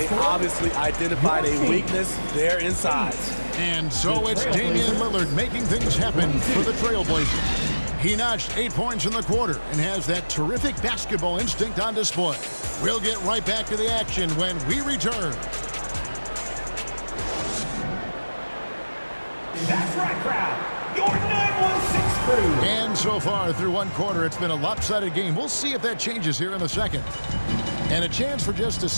obviously identified a weakness there inside. And so it's Damian Lillard making things happen for the Trailblazers. He notched 8 points in the quarter and has that terrific basketball instinct on display. We'll get right back to the action when we return. That's right, crowd. Your 916 crew. And so far through one quarter, it's been a lopsided game. We'll see if that changes here in the second. And a chance for just a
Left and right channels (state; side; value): inverted; both; correlation -1.00